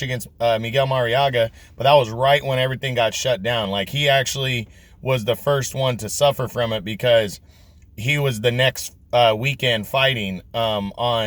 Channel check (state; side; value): identical; both; correlation 1.00